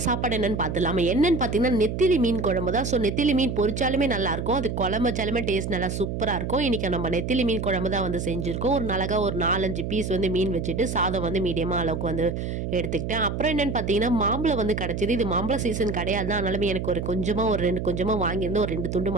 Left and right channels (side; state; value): right; noise; hum, 4 dB below the sound